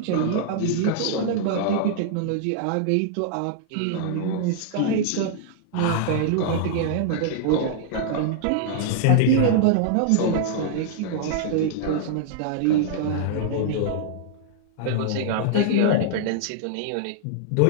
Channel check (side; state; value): both; different; correlation -0.01